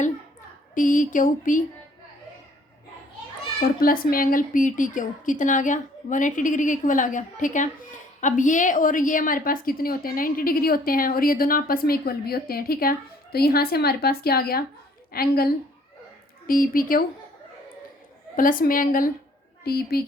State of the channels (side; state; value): both; normal; correlation 0.59